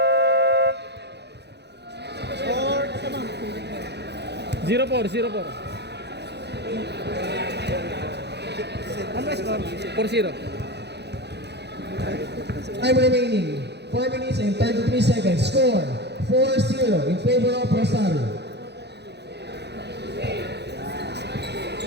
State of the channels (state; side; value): late; left; 0.49 ms